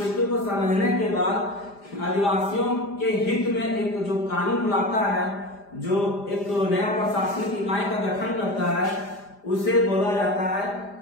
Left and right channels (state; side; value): late; right; 5.0 ms